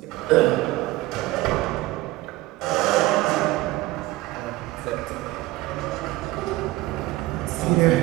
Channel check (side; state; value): left; quieter; 18.4 dB